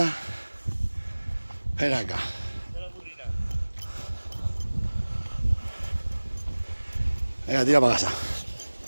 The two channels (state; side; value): inverted; both; correlation -1.00